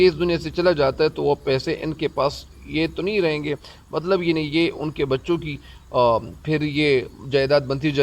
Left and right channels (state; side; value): identical; both; correlation 1.00